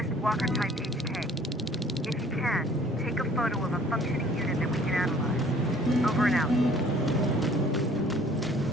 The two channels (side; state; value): both; normal; correlation 0.54